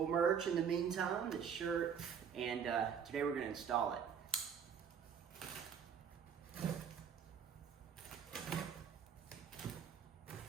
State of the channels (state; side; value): quieter; left; 7.5 dB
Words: merch in the meantime, the shirt, and today we're gonna install it.